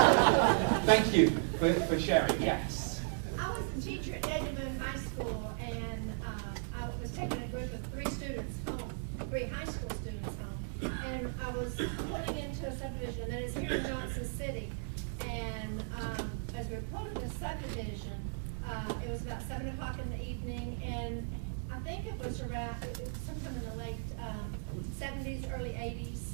Thank you for sharing. Yes. I was a teacher at Edmond High School, and I was taking a group of 3 students home, 3 high school students home, and I was pulling into a subdivision that is here in Johnson City. And as we were pulling the subdivision, it was about 7 o'clock in the evening, and I think it was around, sometime in the late 70s, early 80s,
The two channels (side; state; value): left; silent; digital silence